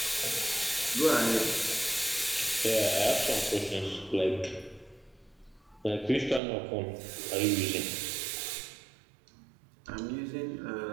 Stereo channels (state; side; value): drops out; left; at 6.4 s